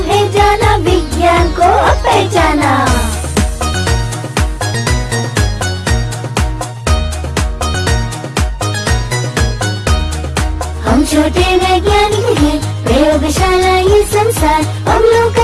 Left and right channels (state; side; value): identical; both; correlation 1.00